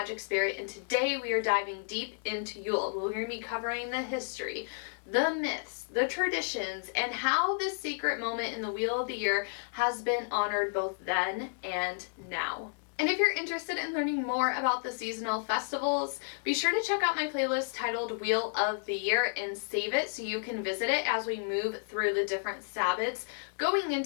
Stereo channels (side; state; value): right; silent; digital silence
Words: Spirit, and today we are diving deep into Yule. We're going to be covering the history, the myths, the traditions, and how this sacred moment in the Wheel of the Year has been honored both then and now. And if you're interested in learning more about the seasonal festivals, be sure to check out my playlist titled Wheel of the Year and save it so you can visit it as we move through the different Sabbats going